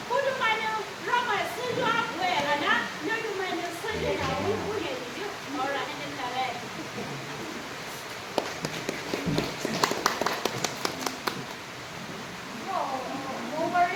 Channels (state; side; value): identical; both; correlation 1.00